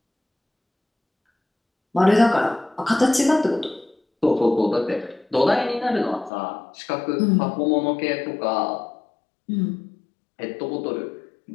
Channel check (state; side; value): drops out; right; at 6.3 s